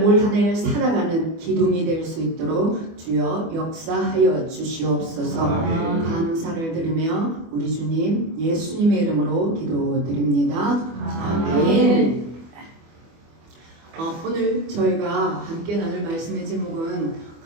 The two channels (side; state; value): left; late; 24 ms